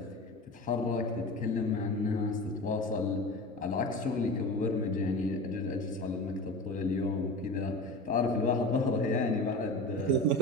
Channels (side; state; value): both; normal; correlation 0.31